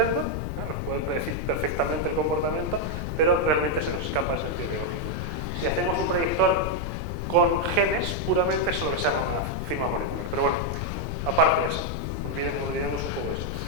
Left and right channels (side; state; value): left; noise; rumble, 3 dB below the sound